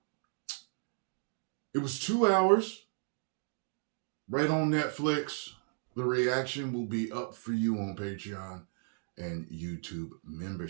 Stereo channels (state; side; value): silent; left; digital silence